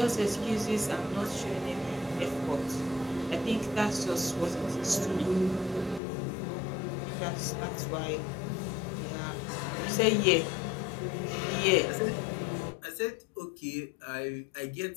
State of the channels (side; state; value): right; drops out; at 6.0 s